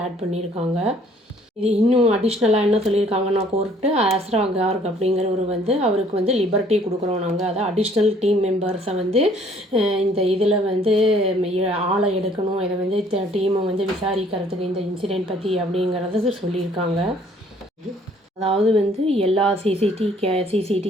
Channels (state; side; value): normal; both; correlation 0.60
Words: ஆட் பண்ணியிருக்காங்க. இது இன்னும் அடிஷ்னலாக என்ன சொல்லியிருக்காங்கன்னா கோர்ட்டு, அஸ்ரா கார்க் அப்படிங்கிறவர் அவருக்கு லிபர்ட்டி கொடுக்குறோம் நாங்கள், அதாவது அடிஷ்னல் டீம் மெம்பர்ஸை இந்த இதில் ஆளை எடுக்கணும், இதை டீமை விசாரிக்கிறதுக்கு இந்த இன்சிடெண்ட் பற்றி அப்படிங்கிறத சொல்லியிருக்காங்க. அதாவது எல்லா